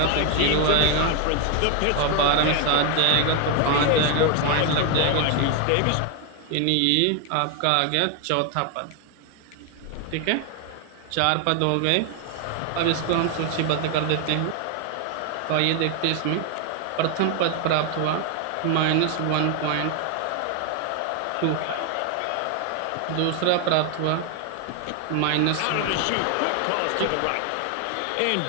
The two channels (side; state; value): both; different; correlation 0.01